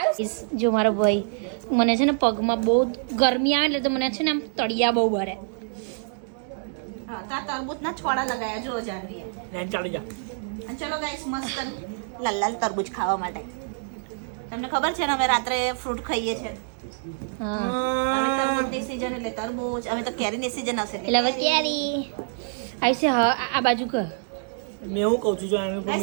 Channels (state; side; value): silent; left; digital silence